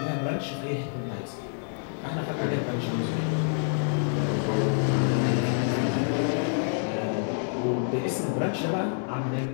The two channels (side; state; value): right; silent; digital silence